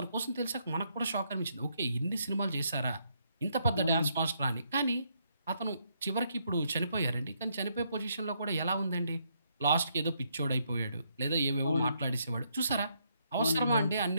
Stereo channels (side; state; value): both; inverted; correlation -0.74